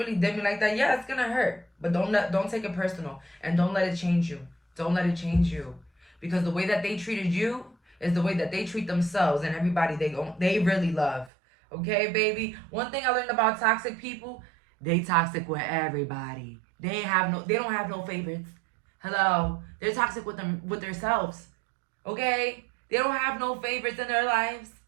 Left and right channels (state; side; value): drops out; left; at 11.3 s